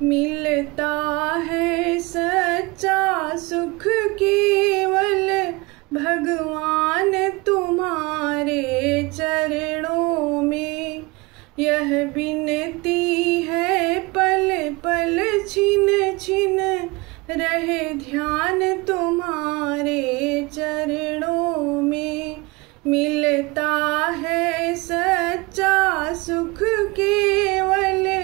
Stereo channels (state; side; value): quieter; left; 24.7 dB